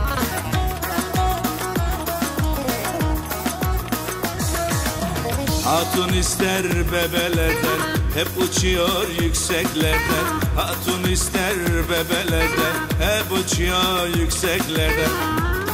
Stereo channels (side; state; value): both; identical; correlation 1.00